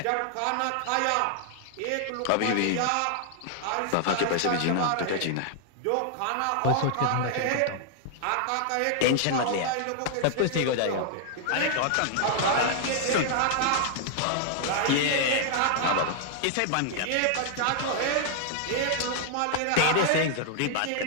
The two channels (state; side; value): different; both; correlation 0.00